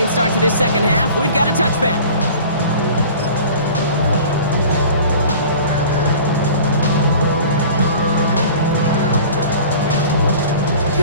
start to this 2nd half. We've got a touchback.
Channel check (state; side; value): inverted; both; correlation -0.43